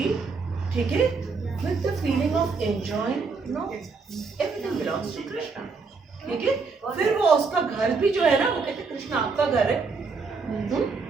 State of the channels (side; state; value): left; quieter; 4.6 dB